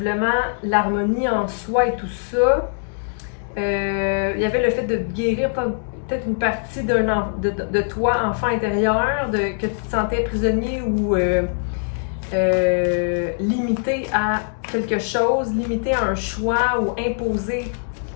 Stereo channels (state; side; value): silent; right; digital silence